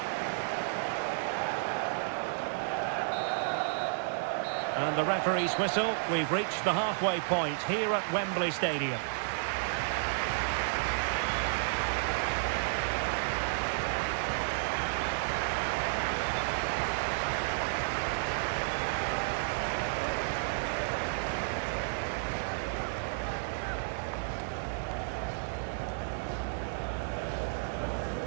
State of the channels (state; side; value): silent; left; 56 dB below the other